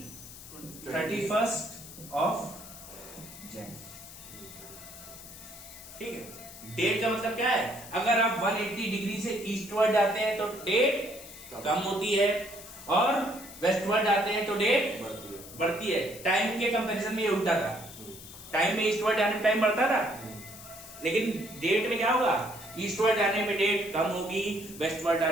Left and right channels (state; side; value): noise; left; hiss, 15 dB below the sound